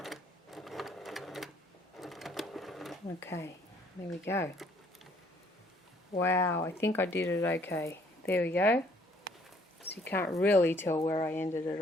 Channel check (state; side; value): normal; both; correlation 0.62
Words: Okay, there we go. Wow, I think I did it okay. There we go. So you can't really tell where I ended it